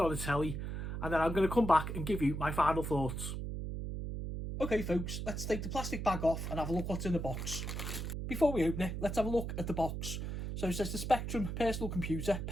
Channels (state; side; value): noise; right; hum, 4 dB below the sound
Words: the telly and then I'm going to come back and give you my final thoughts. Okay folks, let's take the plastic bag off and have a look what's in the box. Before we open it, let's have a look at the box. So it says the Spectrum Personal Computer